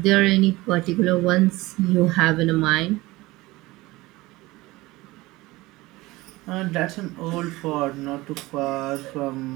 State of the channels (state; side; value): quieter; left; 20.1 dB